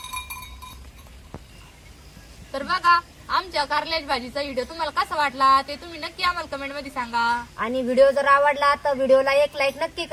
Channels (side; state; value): both; identical; correlation 1.00